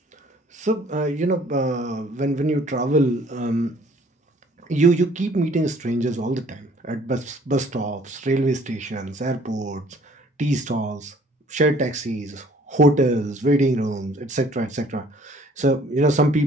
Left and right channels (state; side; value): normal; both; correlation 0.57